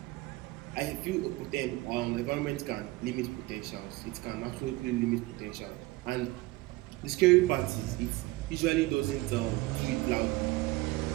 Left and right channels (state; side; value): quieter; left; 20.4 dB